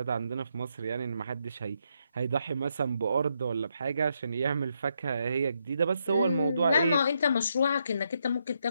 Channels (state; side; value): inverted; both; correlation -0.78